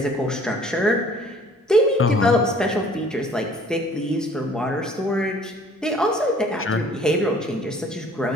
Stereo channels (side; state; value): both; normal; correlation 0.53